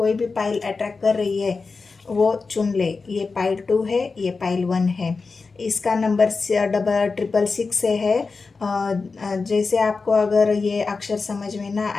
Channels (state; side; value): quieter; right; 4.3 dB